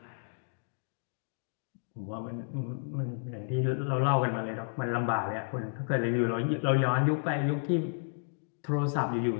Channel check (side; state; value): right; silent; digital silence